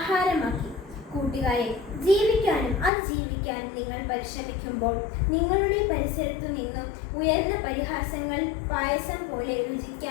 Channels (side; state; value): right; drops out; at 2.9 s